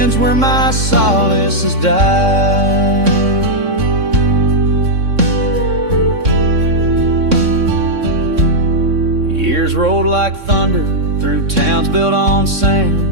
where my solace has died. Years rolled like thunder through towns built on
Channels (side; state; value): left; late; 3.6 ms